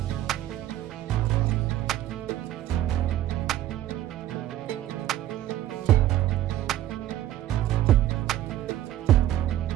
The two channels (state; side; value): quieter; left; 13.2 dB